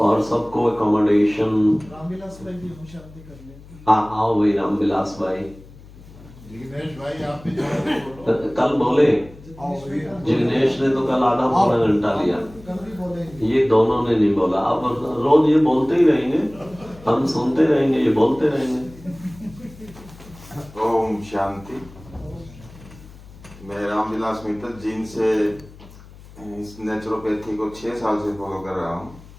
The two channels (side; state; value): left; noise; hum, 20 dB below the sound